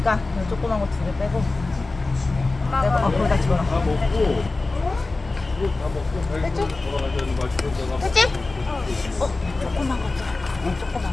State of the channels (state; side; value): quieter; right; 3.4 dB